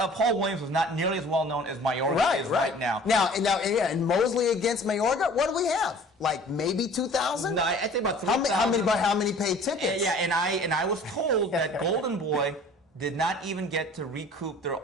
Williams was not nearly as well known as Mayorga is right now. And Mosley against Mayorga, what do we have? Like maybe 2,000? No, I think about 3,000. How many paid tickets? Yeah, and I was told that Golden Boy did not even get to recoup their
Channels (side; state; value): both; normal; correlation 0.47